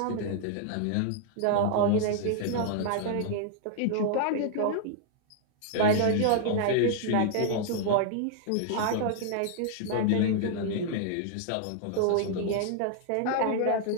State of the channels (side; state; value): both; different; correlation -0.01